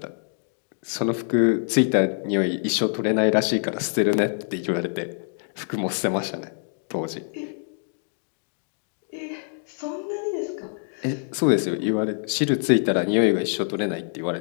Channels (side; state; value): right; silent; 62 dB below the other